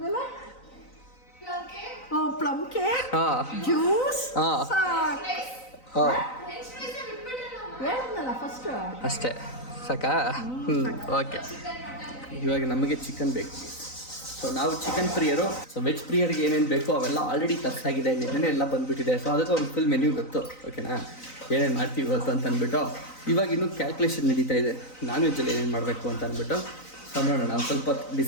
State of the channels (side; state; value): right; late; 3.9 ms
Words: ಪ್ಲಮ್ ಕೇಕ್, ಜ್ಯೂಸ್, ಹೇಳಿದ್ನಲ್ಲ ಫಸ್ಟ್. ಅಷ್ಟೇ ಸಾಕಾ? ಓಕೆ. ಇವಾಗ ನಮಗೆ ಚಿಕನ್ ಬೇಕು. ಸೊ ನಾವು ಚಿಕನ್ ಪ್ರಿಯರು. ಸೊ ವೆಜ್ ಪ್ರಿಯರಿಗೆ ಏನೇನು ಬೇಕೋ ಅವೆಲ್ಲ ಆಲ್ರೆಡಿ ತರ್ಸಾಗಿದೆ, ನಿನ್ನೆ ಎಲ್ಲ ಬಂದುಬಿಟ್ಟಿದೆ. ಸೊ ಅದಕ್ಕೆ ಒಂದು ಫುಲ್ ಮೆನ್ಯೂ ಗೊತ್ತು. ಓಕೆನಾ? ಏನೇನು ಮಾಡ್ತೀವಿ ಇವತ್ತು ಅಂತ ಅಂದ್ಬಿಟ್ಟು ಇವಾಗ ಇನ್ನೂ ಕ್ಯಾಲ್ಕುಲೇಷನ್ ನಡೀತಾ ಇದೆ, ನಾನ್ ವೆಜ್ಜಲ್ಲಿ ಏನೇನು ಮಾಡಬೇಕು ಅಂತ ಅಂದ್ಬಿಟ್ಟು. ಸೊ ನೋಡೋಣ, ಒಂದು ಸ್ವಲ್ಪ